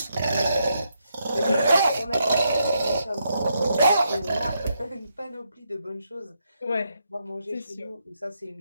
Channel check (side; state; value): both; inverted; correlation -0.80